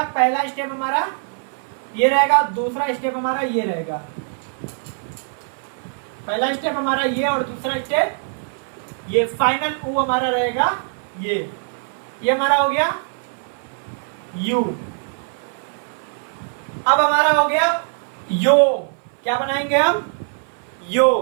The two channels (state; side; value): silent; left; 57 dB below the other